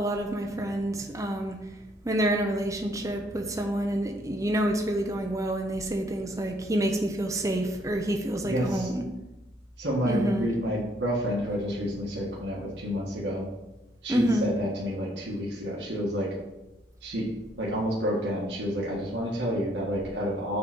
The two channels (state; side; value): normal; both; correlation 0.67